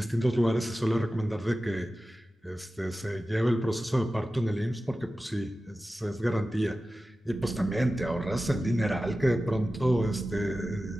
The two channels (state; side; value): normal; both; correlation 0.94